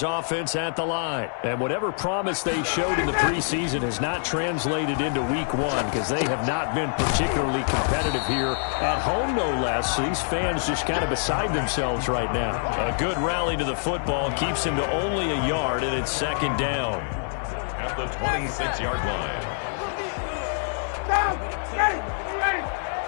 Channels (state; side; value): silent; right; digital silence